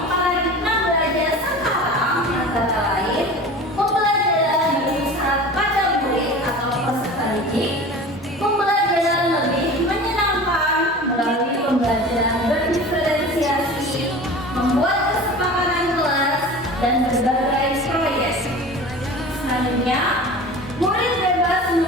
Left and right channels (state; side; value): normal; both; correlation 0.37